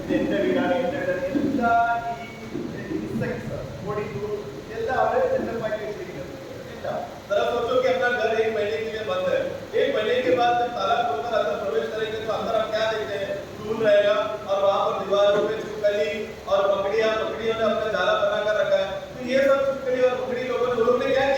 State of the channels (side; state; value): both; identical; correlation 1.00